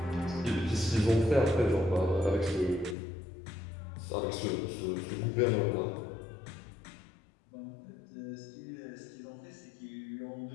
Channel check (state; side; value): drops out; right; at 3.0 s